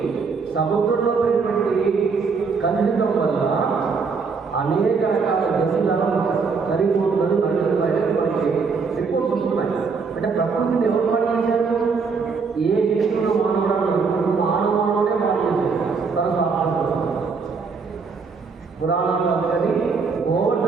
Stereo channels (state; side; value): quieter; left; 5.0 dB